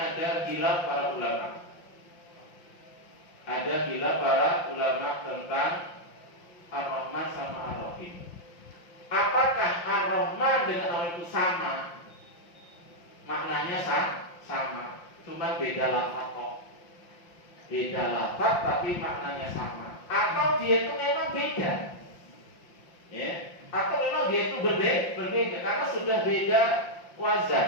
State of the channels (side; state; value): right; late; 5.7 ms